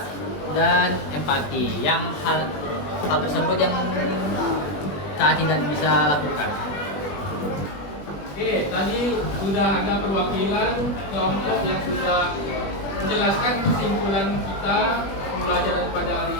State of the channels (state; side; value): late; right; 20 ms